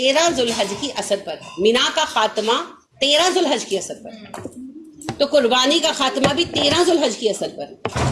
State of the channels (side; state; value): both; identical; correlation 1.00